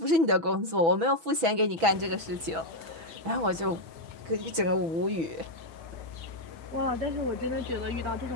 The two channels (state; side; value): late; left; 6.1 ms